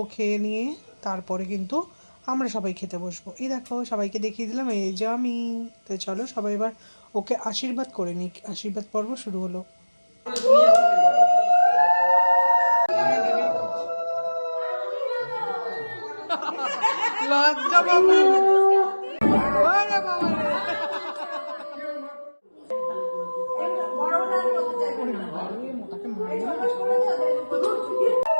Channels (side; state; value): both; inverted; correlation -1.00